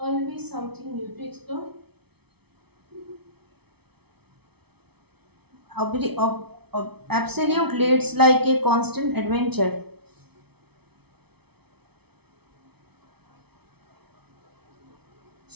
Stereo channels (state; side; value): late; left; 0.98 ms